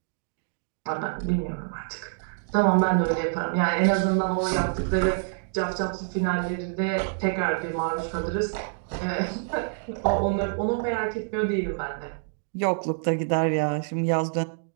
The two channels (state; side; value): silent; left; digital silence